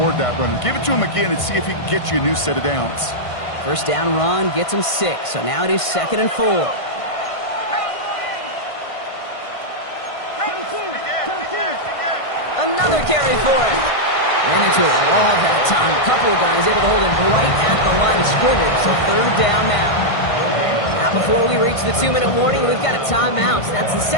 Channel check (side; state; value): right; late; 1.5 ms